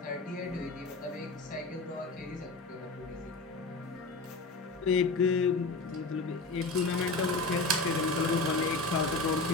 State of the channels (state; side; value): quieter; right; 3.4 dB